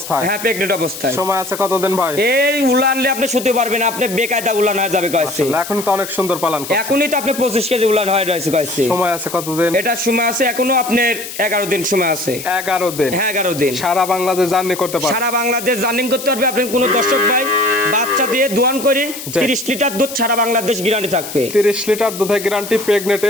হ্যাঁ প্রেগনেন্ট অবস্থায়। সময় আছে কতদিন ভাই? এই উলানলে আপনি শুতে পারবেন, আপনি বেকায়দা উলান হয়ে যাবে কইছে। এখন তো অনেক সুন্দর পালন করছে। এখনই তো আপনি 25 কেজি উলান হয়ে রয়েছে কইছে। সময় আছে কতদিন? এটা সময় আছে এখনো আপনার 11 দিন সময় আছে। 11 দিন? হ্যাঁ 11 দিন। সারা বাংলাদেশ জার্নি করতে পারবে? সারা বাংলাদেশ জার্নি করতে পারবে। আপনি কোন দর্শক ভাই বাচ্চা দিয়ে দোয়ান করে 30 লিটার দুধ সারা বাংলাদেশ গ্যারান্টি থাকবে। 30 লিটার দুধের গ্যারান্টি প্রেগনেন্ট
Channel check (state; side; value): noise; left; hiss, 10 dB below the sound